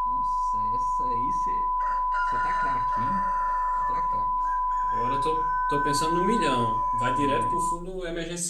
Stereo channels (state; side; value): identical; both; correlation 1.00